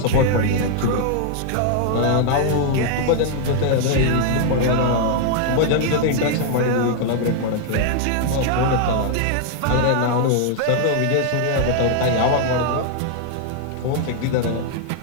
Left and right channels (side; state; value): both; different; correlation 0.00